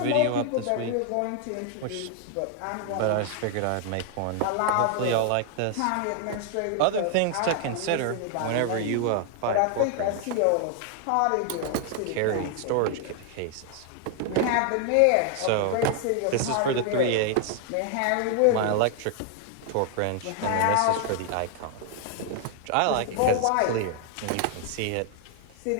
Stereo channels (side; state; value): both; different; correlation 0.00